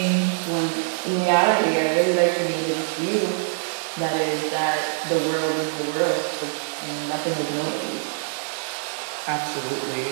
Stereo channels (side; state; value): left; silent; 63 dB below the other